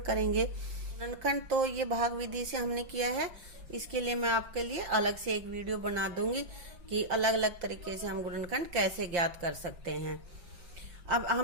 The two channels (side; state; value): left; late; 5.7 ms